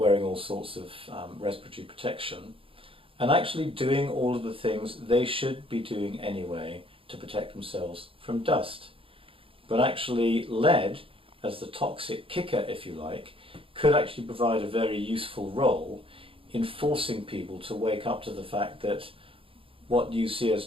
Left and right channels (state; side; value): late; left; 0.26 ms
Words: all sorts of respiratory protection, and actually doing all of the things they should be doing anyway to protect themselves from dust. But actually lead, as the toxic kicker if you like, could actually provide a very useful role in forcing people to wake up to the fact that what you see as